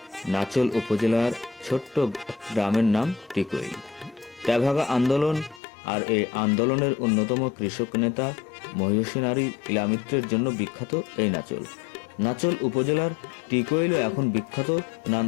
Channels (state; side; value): drops out; right; at 5.6 s